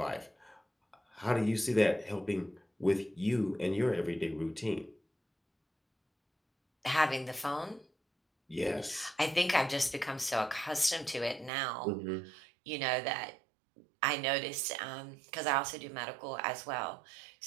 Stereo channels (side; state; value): left; drops out; at 11.5 s